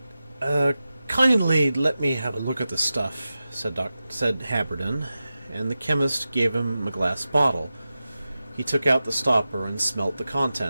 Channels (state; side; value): inverted; both; correlation -0.93